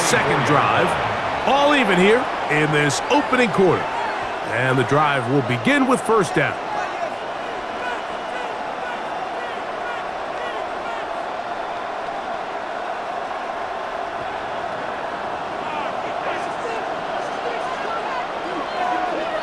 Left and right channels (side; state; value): both; identical; correlation 1.00